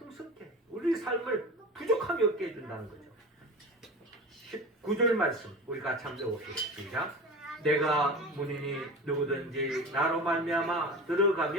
우리 삶을 부족함이 없게 해준다는 거죠. 19절 말씀 우리 같이 한번 읽어봅시다. 시작. 내가 문이니 누구든지 나로 말미암아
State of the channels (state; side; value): normal; both; correlation 0.32